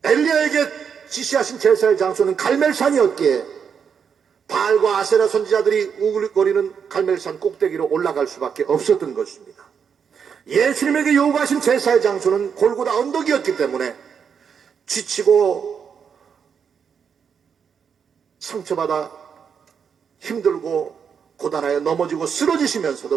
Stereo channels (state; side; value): quieter; left; 6.9 dB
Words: 엘리야에게 지시하신 제사의 장소는 갈멜산이었기에 바알과 아세라 선지자들이 우글거리는 갈멜산 꼭대기로 올라갈 수밖에 없었던 것입니다. 예수님에게 요구하신 제사의 장소는 골고다 언덕이었기 때문에 지치고 상처받아 힘들고 고단하여 넘어지고